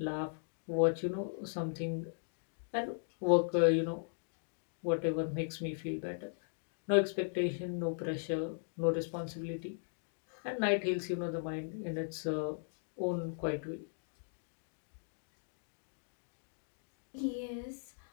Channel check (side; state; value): right; silent; digital silence